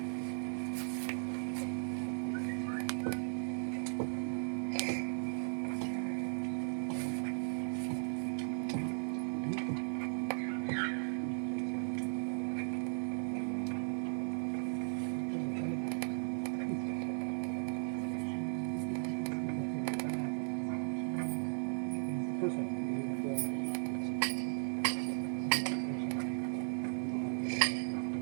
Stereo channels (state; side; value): silent; left; digital silence